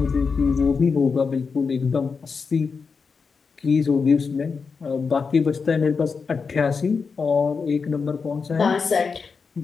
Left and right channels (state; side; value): quieter; right; 5.2 dB